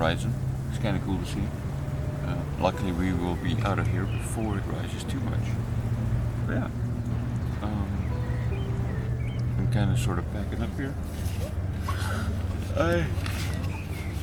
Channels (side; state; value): both; identical; correlation 1.00